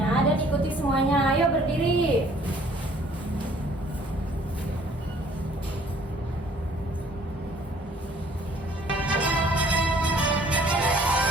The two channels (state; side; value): normal; both; correlation 0.58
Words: dan ikuti semuanya. Ayo berdiri.